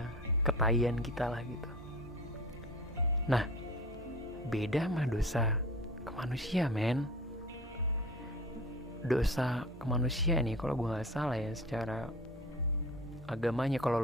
ketahian kita lah gitu. Nah, beda sama dosa ke manusia, men. Dosa ke manusia nih, kalau gue nggak salah ya, secara agamanya, kalau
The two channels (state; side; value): normal; both; correlation 0.38